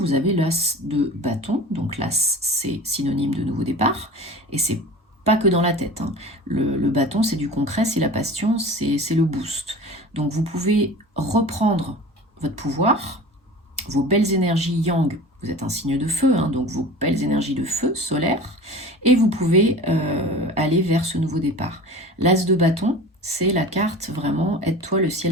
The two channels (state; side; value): normal; both; correlation 0.38